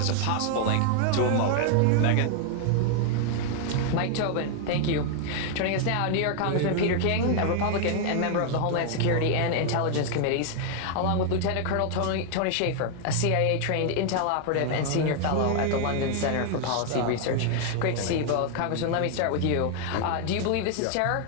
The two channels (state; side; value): different; both; correlation 0.00